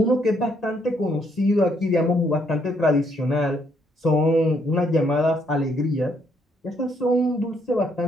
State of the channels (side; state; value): both; normal; correlation 0.71